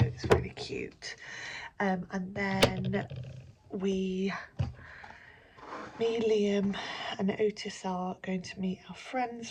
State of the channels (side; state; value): both; identical; correlation 1.00